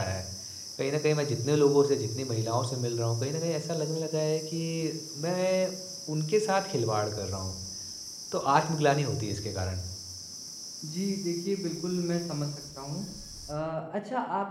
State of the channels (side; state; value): both; identical; correlation 1.00